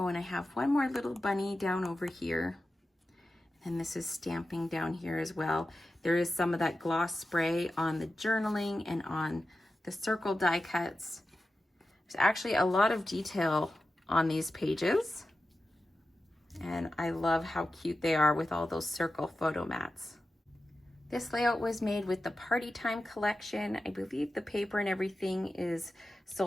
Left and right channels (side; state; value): both; normal; correlation 0.93